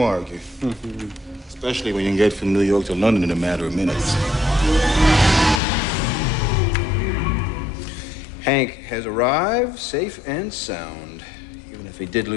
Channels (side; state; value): right; drops out; at 5.6 s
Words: argue? Especially when you can get from New York to London in a matter of minutes. Hank has arrived safe and sound, even if he did